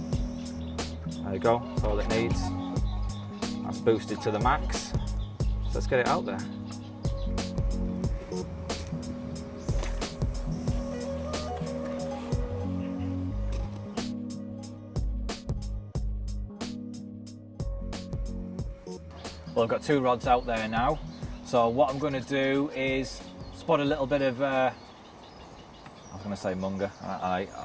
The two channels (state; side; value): identical; both; correlation 1.00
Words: There you go, that's all it needs. That's boosted to the max. So let's get it out there. Well, I've got 2 rods out there now. So what I'm going to do is spot a little bit of, I was going to say munger.